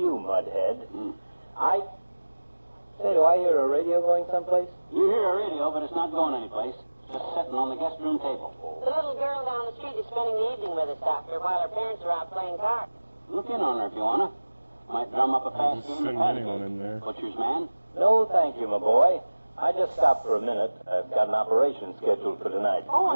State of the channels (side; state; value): both; inverted; correlation -1.00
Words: Mudhead. Say, do I hear a radio going someplace? You hear a radio, but it's not going anyplace. Just sitting on the guest room table. The little girl down the street is spending the evening with us, Doctor, while her parents are out playing cards. Look in on her if you wanna. Might drum up a fast game of patty cake. Butcher's man. No, thank you, my boy. I just stopped for a minute. I've got an operation scheduled for tonight. Oh,